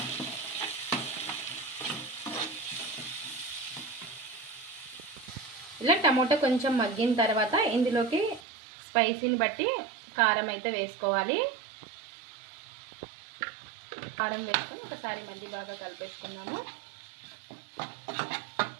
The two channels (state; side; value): drops out; left; at 8.4 s